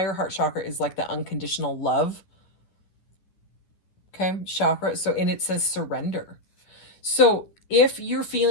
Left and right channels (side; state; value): right; late; 10 ms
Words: heart chakra is like the unconditional love. Okay, chakra. So, and it says surrender. So if you're